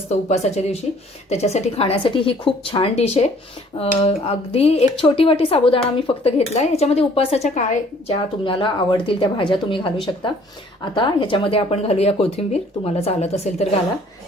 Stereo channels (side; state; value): both; normal; correlation 0.57